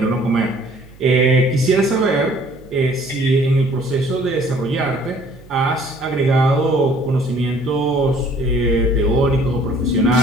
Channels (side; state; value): right; noise; hum, 23 dB below the sound